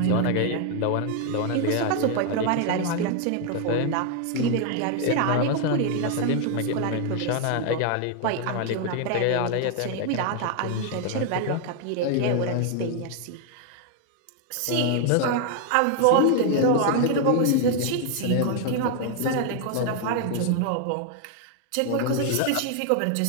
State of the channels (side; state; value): both; different; correlation 0.00